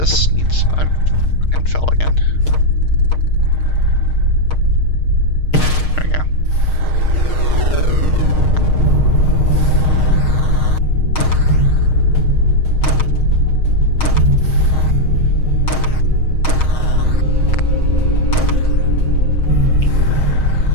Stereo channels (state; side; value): late; right; 6.5 ms